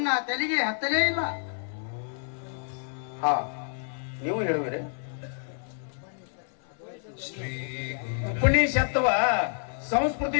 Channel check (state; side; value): silent; right; 59 dB below the other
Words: ತಲೆಗೆ ಹತ್ತಲೇ ಇಲ್ಲ. ಹಾ, ನೀವು ಹೇಳುವಿರಿ. ಉಪನಿಷತ್ವ